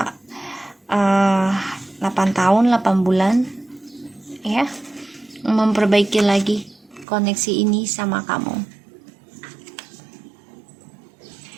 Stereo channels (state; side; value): drops out; left; at 7.1 s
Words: 8 tahun 8 bulan ya, memperbaiki lagi koneksi ini sama kamu.